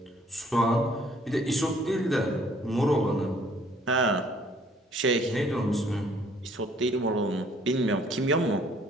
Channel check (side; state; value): both; normal; correlation 0.60